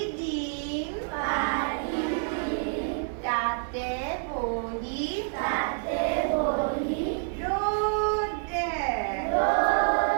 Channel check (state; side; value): silent; left; 59 dB below the other